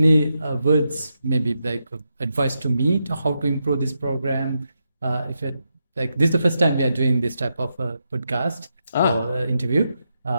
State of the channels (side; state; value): both; inverted; correlation -0.85